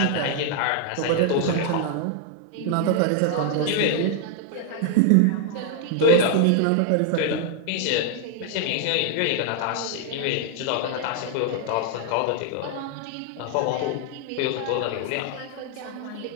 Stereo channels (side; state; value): both; different; correlation 0.00